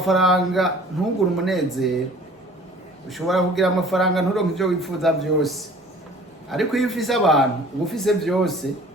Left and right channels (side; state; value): both; normal; correlation 0.49